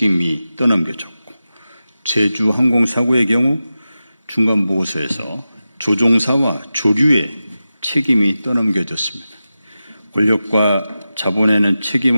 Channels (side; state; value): both; inverted; correlation -0.93